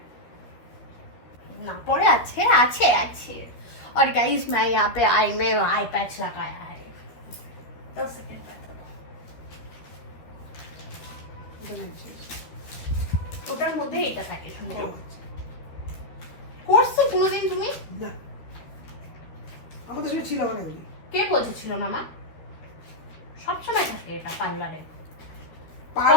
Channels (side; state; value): right; late; 13 ms